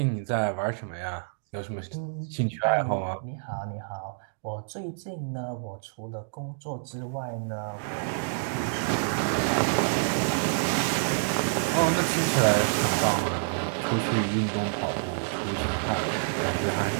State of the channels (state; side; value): silent; left; digital silence